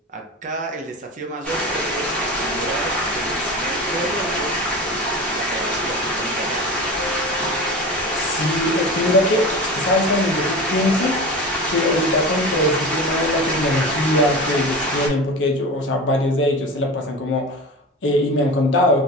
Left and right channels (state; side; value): normal; both; correlation 0.30